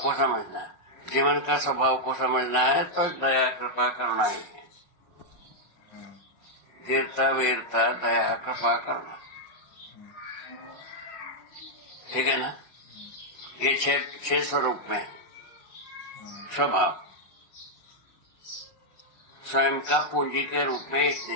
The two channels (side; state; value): right; late; 5.5 ms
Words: को समझना है, जीवन का स्वभाव को समझना है, तो दया, कृपा, करुणा ही है। धीरता, वीरता, दया, कृपा, करुणा, ठीक है ना। ये 6 स्वरूप में स्वभाव। स्वयं का पूंजी के रूप में एक